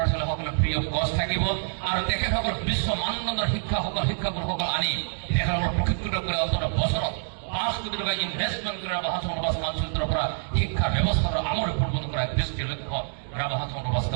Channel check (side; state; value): left; silent; digital silence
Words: ছোৱালীসকলে ফ্ৰী অফ কষ্ট থাকিব আৰু তেখেতসকল বিশ্ব মানদণ্ডৰ শিক্ষাগুৰুসকল আনি তেখেতসকলক প্ৰশিক্ষিত কৰি অন্তত বছৰত 5 কোটি টকা ইনভেষ্টমেণ্ট কৰি ৰাভা হাছান সমাজ কাউন্সিলৰ পৰা শিক্ষা ব্যৱস্থাৰ আমূল পৰিৱৰ্তন কৰাৰ দৃষ্টিৰ লক্ষ্য ৰাভা হাছান সমাজ